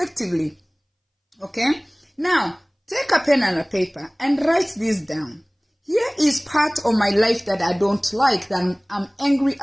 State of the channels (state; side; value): identical; both; correlation 1.00